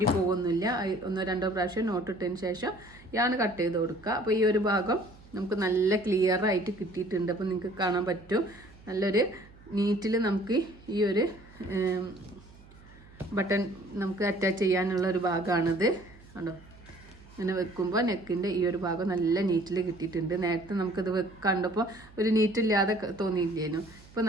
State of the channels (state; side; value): noise; right; hum, 23 dB below the sound